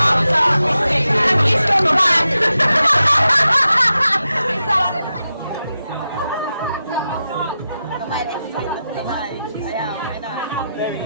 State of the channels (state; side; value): inverted; both; correlation -0.90